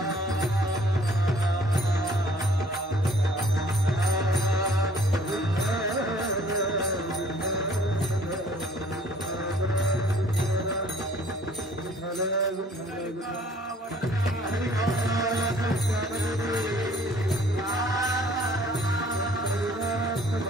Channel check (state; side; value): normal; both; correlation 0.56